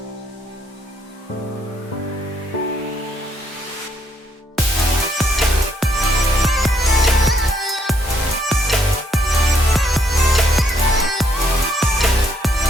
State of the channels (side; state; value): both; normal; correlation 0.72